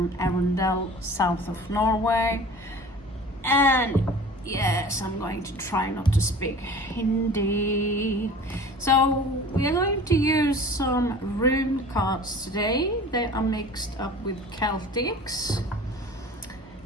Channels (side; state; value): both; normal; correlation 0.42